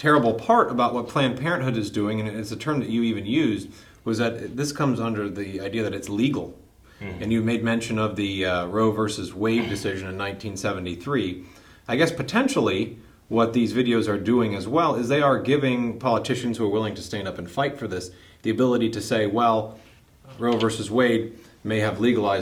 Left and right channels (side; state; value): both; identical; correlation 1.00